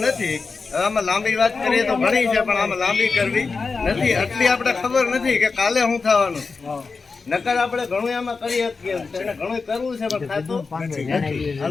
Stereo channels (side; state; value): right; quieter; 4.5 dB